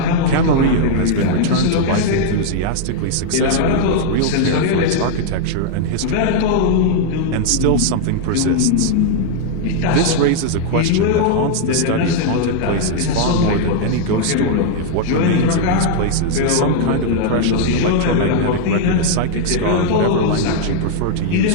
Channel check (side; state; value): both; different; correlation 0.00